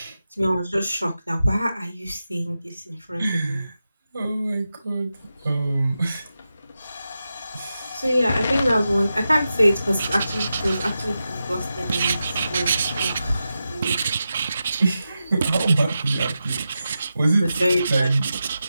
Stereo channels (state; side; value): inverted; both; correlation -0.90